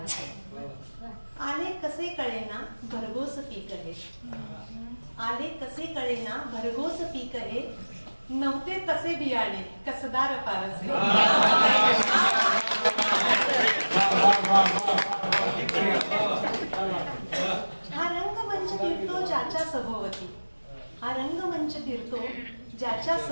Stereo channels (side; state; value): both; inverted; correlation -1.00